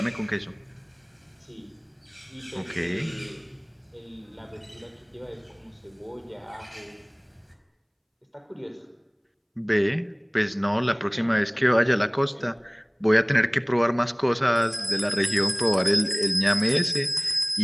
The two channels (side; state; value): both; identical; correlation 1.00